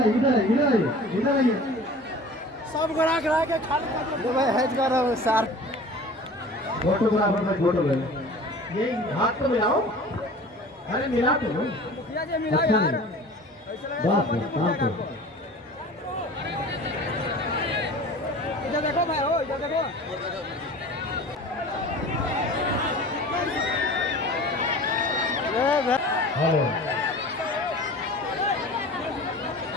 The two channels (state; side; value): normal; both; correlation 0.41